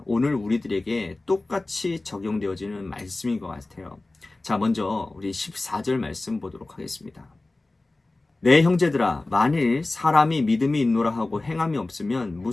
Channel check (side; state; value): right; quieter; 3.0 dB